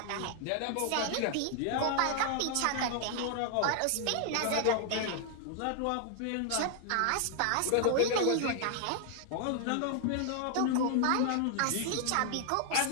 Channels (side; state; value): both; different; correlation 0.00